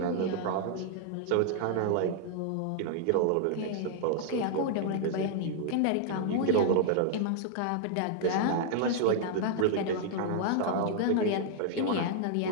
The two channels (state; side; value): different; both; correlation -0.01